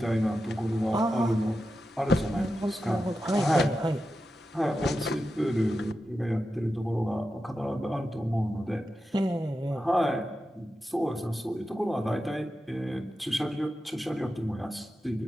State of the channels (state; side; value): normal; both; correlation 0.91